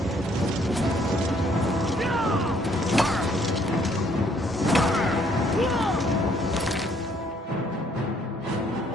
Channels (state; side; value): normal; both; correlation 0.65